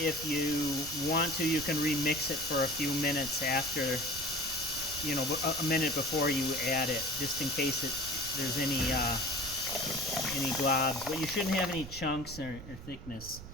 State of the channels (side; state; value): right; noise; rumble, 13 dB below the sound